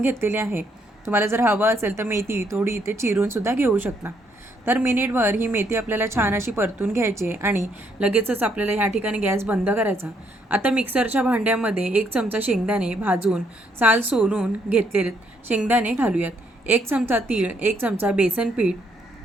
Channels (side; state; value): both; normal; correlation 0.72